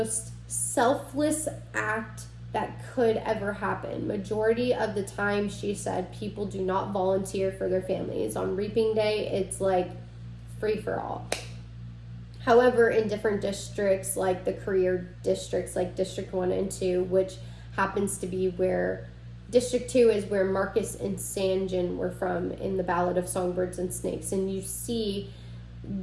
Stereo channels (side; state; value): both; identical; correlation 1.00